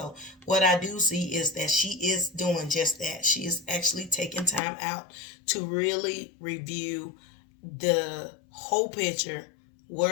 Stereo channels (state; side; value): drops out; right; at 4.6 s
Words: what I do see is that she is doing just that. She is actually taking time out to really review the whole picture,